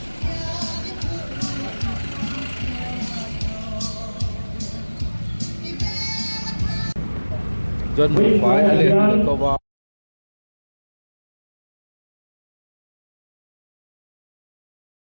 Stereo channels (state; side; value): inverted; both; correlation -1.00